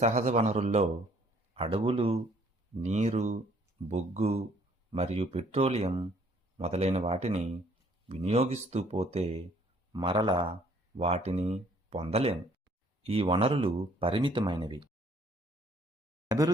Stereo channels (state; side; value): normal; both; correlation 0.61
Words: వనరుల్లో అడవులు, నీరు, బొగ్గు మరియు పెట్రోలియం మొదలైన వాటిని వినియోగిస్తూ పోతే మరల వాటిని పొందలేము. ఈ వనరులు పరిమితమైనవి.